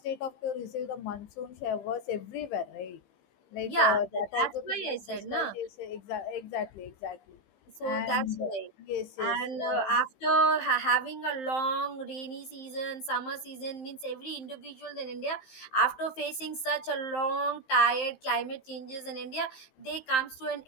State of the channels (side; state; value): right; late; 15 ms